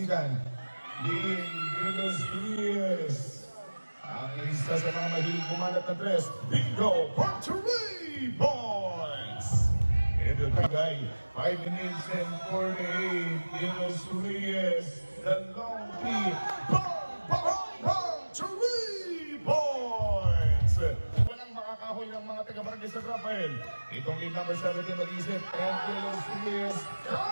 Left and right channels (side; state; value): both; inverted; correlation -1.00